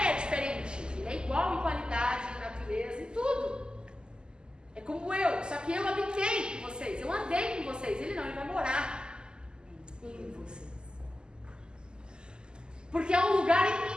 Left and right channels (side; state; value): left; late; 0.047 ms